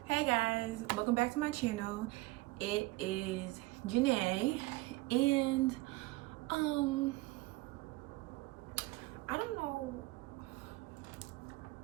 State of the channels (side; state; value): left; quieter; 21.1 dB